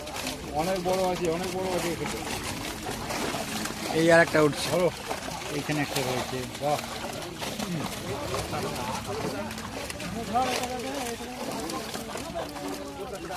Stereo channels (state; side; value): identical; both; correlation 1.00